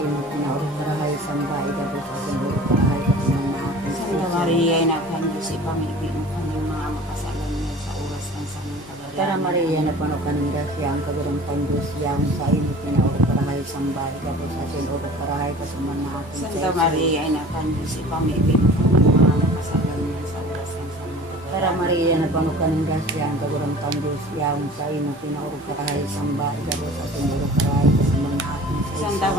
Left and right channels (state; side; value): normal; both; correlation 0.43